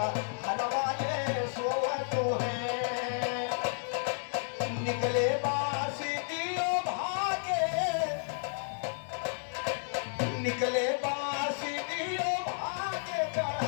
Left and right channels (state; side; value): silent; right; digital silence